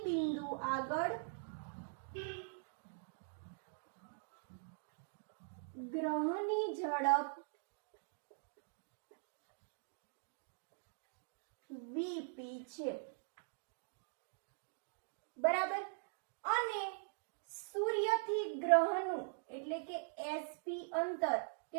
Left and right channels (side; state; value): left; silent; digital silence